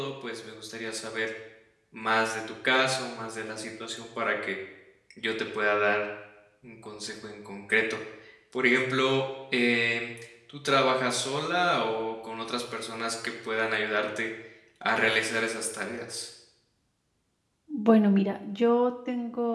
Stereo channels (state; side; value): identical; both; correlation 1.00